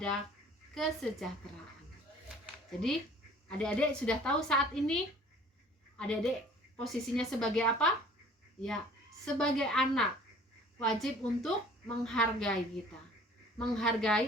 kesejahteraan. Jadi, adik-adik sudah tahu saat ini adik-adik posisinya sebagai apa? Ya, sebagai anak wajib untuk menghargai kita,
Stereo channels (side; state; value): both; normal; correlation 0.51